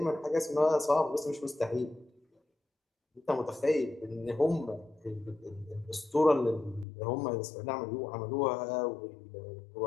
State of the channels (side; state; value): right; drops out; at 6.9 s